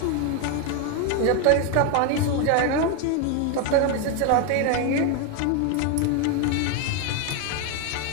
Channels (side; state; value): both; different; correlation 0.01